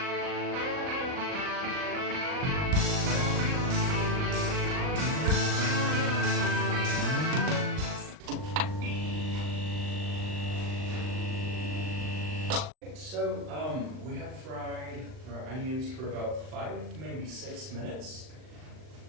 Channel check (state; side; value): late; left; 39 ms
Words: So we have fried our onions for about 5, maybe 6 minutes.